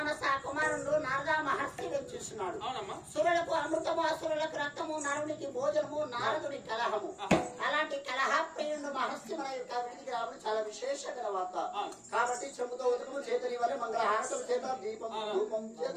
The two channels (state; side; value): identical; both; correlation 1.00